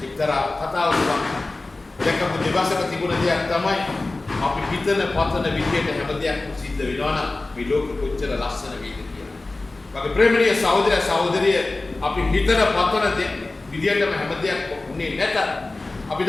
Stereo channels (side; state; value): right; quieter; 3.1 dB